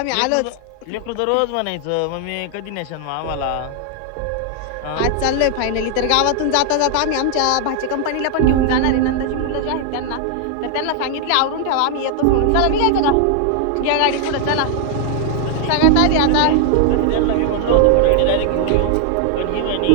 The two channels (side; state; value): both; different; correlation 0.00